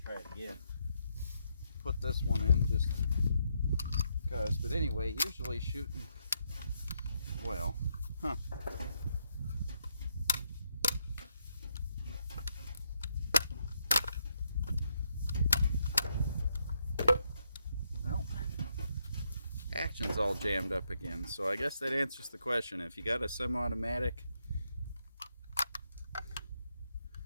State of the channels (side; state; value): both; inverted; correlation -0.78